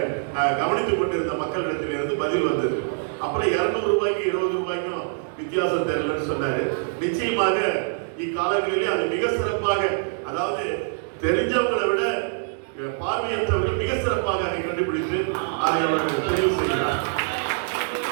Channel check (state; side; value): silent; left; digital silence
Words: கவனித்துக் கொண்டிருந்த மக்களிடத்திலிருந்து பதில் வந்தது. அப்புறம் 200 ரூபாய்க்கு 20 ரூபாய்க்கும் வித்தியாசம் தெரியலன்னு சொன்னாரு. நிச்சயமாக இக்காலங்களிலே அது மிக சிறப்பாக, அதாவது தெரிஞ்சவங்களை விட பார்வையற்றவர்கள் மிக சிறப்பாக அதை கண்டுபிடித்து அதை அவர்கள் தெரிவு செய்கிறார்.